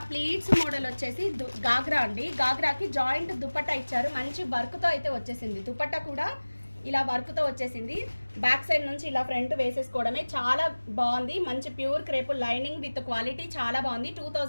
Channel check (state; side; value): inverted; both; correlation -1.00